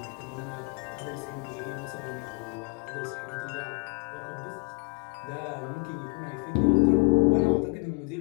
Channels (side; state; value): right; quieter; 35.5 dB